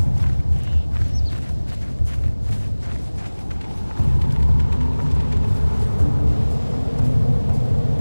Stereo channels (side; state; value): both; inverted; correlation -1.00